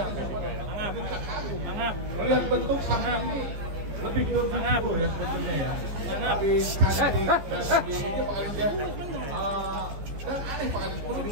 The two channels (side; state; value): left; late; 15 ms